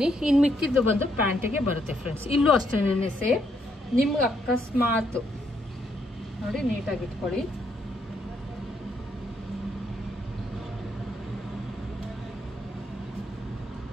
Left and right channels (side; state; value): both; normal; correlation 0.74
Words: ಇನ್ನು ಮಿಕ್ಕಿದ್ದು ಬಂದು ಪ್ಯಾಂಟಿಗೆ ಬರುತ್ತೆ ಫ್ರೆಂಡ್ಸ್. ಇಲ್ಲೂ ಅಷ್ಟೇನೆ ಸೇಮ್. ನಿಮ್ಗೆ ಅಕಸ್ಮಾತ್ ನೋಡಿ ನೀಟಾಗಿ ಇಟ್ಕೊಳ್ಳಿ.